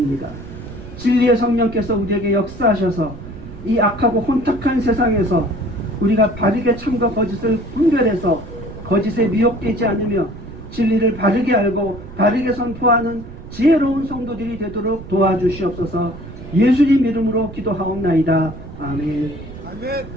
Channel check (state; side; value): noise; right; rumble, 14 dB below the sound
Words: 진리의 성령께서 우리에게 역사하셔서 이 악하고 혼탁한 세상에서 우리가 바르게 참과 거짓을 분별해서 거짓에 미혹되지 않으며 진리를 바르게 알고 바르게 선포하는 지혜로운 성도들이 되도록 도와주시옵소서. 예수님 이름으로 기도하옵나이다. 아멘.